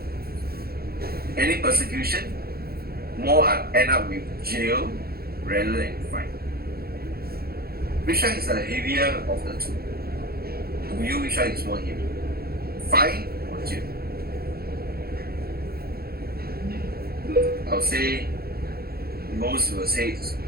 Any persecution, more end up with jail rather than fine. Which one is the heavier of the two? To you, which one is more heavy? Fine or jail? I'll say most will say it's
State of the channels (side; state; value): left; late; 0.45 ms